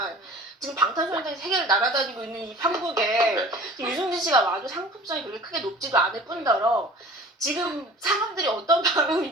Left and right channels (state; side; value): normal; both; correlation 0.43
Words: 지금 방탄소년단이 세계를 날아다니고 있는 이 한국에 지금 유승준 씨가 와도 상품성이 그렇게 크게 높지도 않을 뿐더러 지금 사람들이 어떤